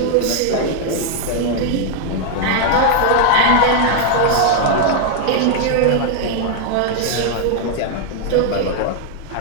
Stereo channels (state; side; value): different; both; correlation 0.00